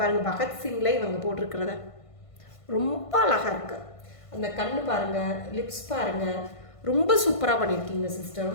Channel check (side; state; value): right; late; 1.5 ms